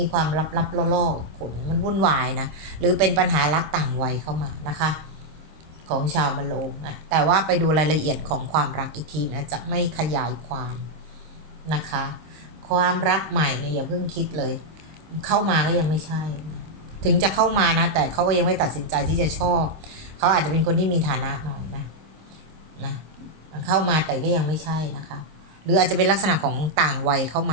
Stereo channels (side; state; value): left; late; 26 ms